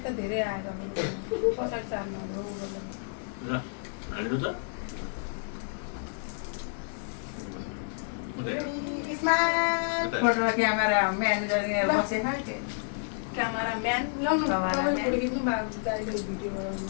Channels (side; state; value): right; silent; 58 dB below the other